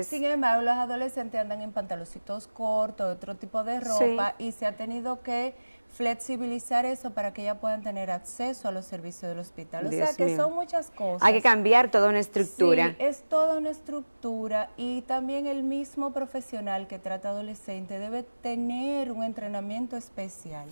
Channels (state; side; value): inverted; both; correlation -1.00